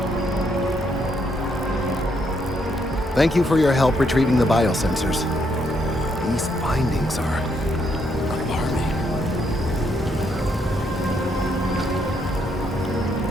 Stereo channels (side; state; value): both; normal; correlation 0.75